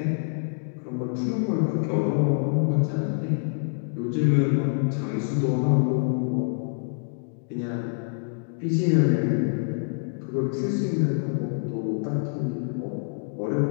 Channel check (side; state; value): right; silent; digital silence